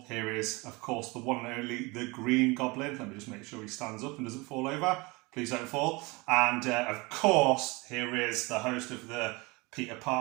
Here is, of course, the one and only, the green goblin. Let me just make sure he stands up and doesn't fall over. Please don't fall. And of course, here is the host of the Peter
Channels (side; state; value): left; quieter; 25.3 dB